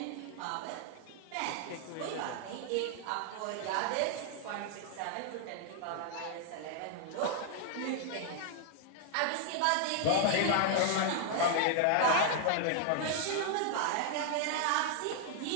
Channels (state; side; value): different; both; correlation -0.01